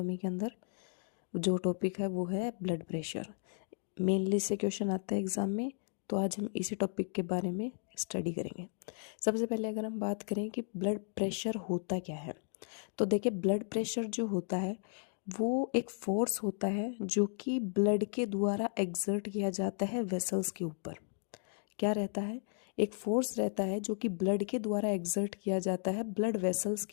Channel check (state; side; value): silent; right; 55 dB below the other